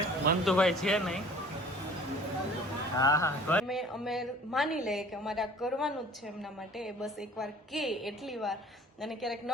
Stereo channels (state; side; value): normal; both; correlation 0.49